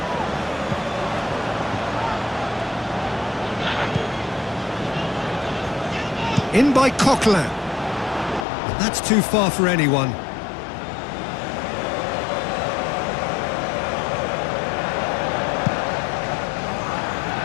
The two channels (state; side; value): drops out; right; at 8.5 s